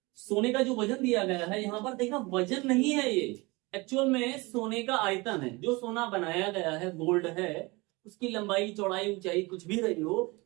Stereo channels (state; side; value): quieter; left; 24.5 dB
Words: सोने का जो वजन दिया गया है यहाँ पर देखना, वजन नहीं है ये, एक्चुअल में सोने का आयतन है। जो सोना बनाया गया है, गोल्ड है, उसकी लंबाई चौड़ाई ऊंचाई कुछ भी रही हो,